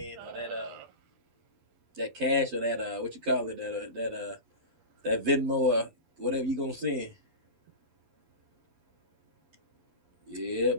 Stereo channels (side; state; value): left; late; 11 ms